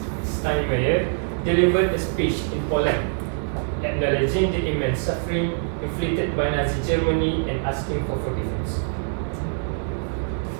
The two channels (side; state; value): left; silent; 63 dB below the other